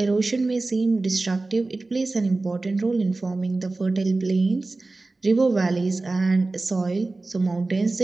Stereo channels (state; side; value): quieter; left; 3.3 dB